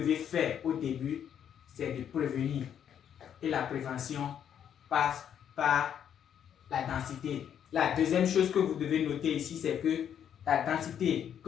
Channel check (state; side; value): quieter; right; 9.1 dB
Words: faire au début, c'est de prévenir. Et la prévention passe par la densité. La deuxième chose que vous devez noter ici, c'est que la densité